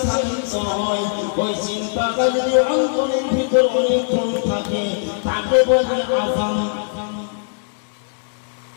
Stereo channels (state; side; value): silent; right; digital silence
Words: হয়, ওই চিন্তাটা যদি অন্তরের ভিতর অনেকক্ষণ থাকে, তাকে বলে আযাম।